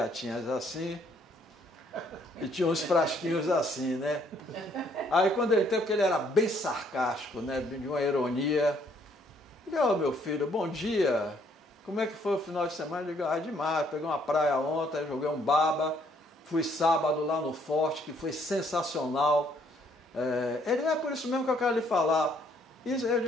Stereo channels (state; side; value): normal; both; correlation 0.66